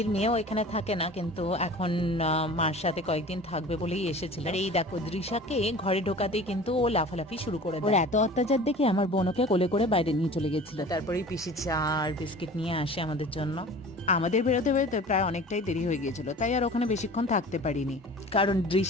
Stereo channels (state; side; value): normal; both; correlation 0.41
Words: মেয়েও এখানে থাকে না, কিন্তু এখন মার সাথে কয়েকদিন থাকবে বলেই এসেছিল। আর এই দেখো দৃশাকে ঘরে ঢোকাতেই কিন্তু ও লাফালাফি শুরু করে দেয়। ওর এত অত্যাচার দেখে আমার বোনকে কোলে করে বাইরে নিয়ে চলে গেছিল। তারপরেই পিসি চা আর বিস্কিট নিয়ে আসে আমাদের জন্য। আমাদের বেরোতে বেরোতে প্রায় অনেকটাই দেরি হয়ে গিয়েছিল, তাই আর ওখানে বেশিক্ষণ থাকতে পারিনি, কারণ